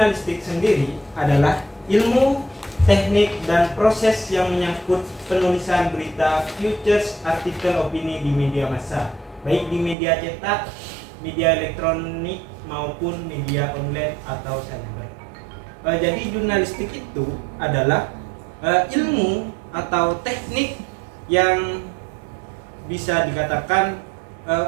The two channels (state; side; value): drops out; left; at 10.0 s